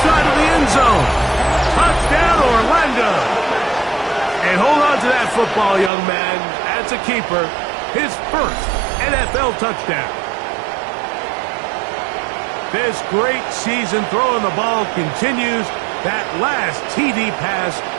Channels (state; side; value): drops out; left; at 5.9 s